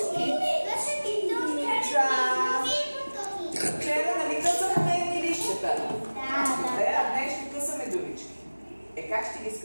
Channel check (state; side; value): inverted; both; correlation -1.00